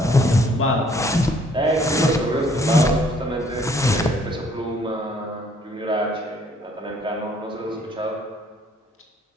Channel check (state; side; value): normal; both; correlation 0.62